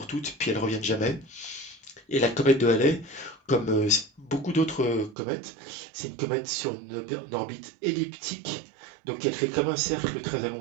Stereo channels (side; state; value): left; drops out; at 5.2 s